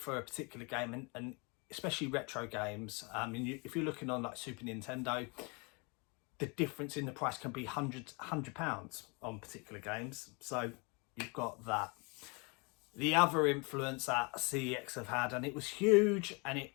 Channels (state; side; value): quieter; right; 30.7 dB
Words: a particular game, and especially retro games. If you're looking on like Super Nintendo, the difference in the price can be £100 on particular games. So you've got that. The other influence that CEX have had, and it was huge, and